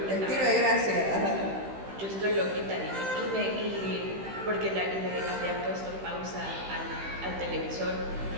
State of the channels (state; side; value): late; left; 15 ms